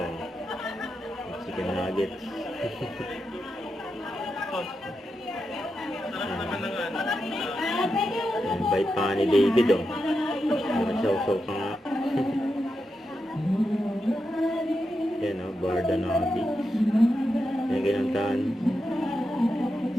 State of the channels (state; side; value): normal; both; correlation 0.87